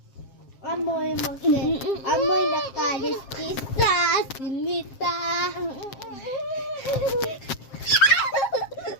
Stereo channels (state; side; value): late; right; 7.5 ms